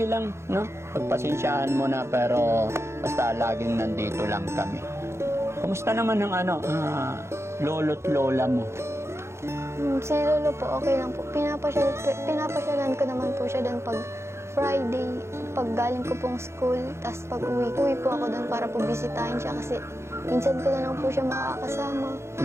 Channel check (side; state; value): left; late; 0.13 ms